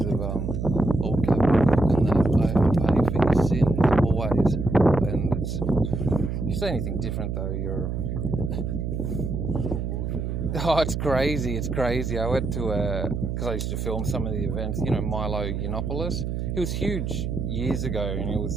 of old capital and that, I have to pay for your sins, always. And if you say anything different, though, you're... Oh, it's crazy. I went to because I used to film some of the events, Milo Yiannopoulos. He was huge years ago, and he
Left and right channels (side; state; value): right; noise; hum, 3 dB below the sound